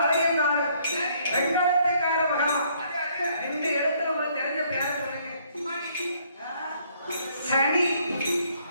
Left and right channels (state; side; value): inverted; both; correlation -0.65